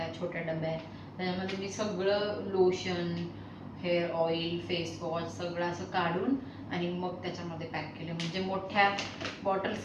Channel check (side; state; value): both; identical; correlation 1.00